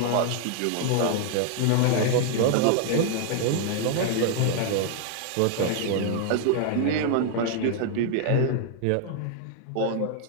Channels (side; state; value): both; different; correlation 0.00